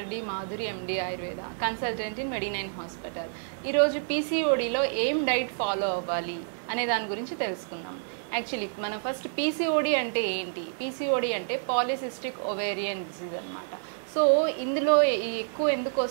D Madhuri, MD Ayurveda, consultant in మెడి9 హాస్పిటల్. ఈరోజు పీసీఓడిలో ఏం డైట్ ఫాలో అవ్వాలి అనే దాని గురించి తెలుసుకుందాం. యాక్చువల్లీ మన ఫస్ట్ పీసీఓడి అంటే ఏంటి? పీసీఓడి అంటే పాలిసిస్టిక్ ఓవేరియన్ డిసీజ్ అన్నమాట. సో ఇందులో ఎక్కువ ఎందుకు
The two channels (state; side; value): silent; left; digital silence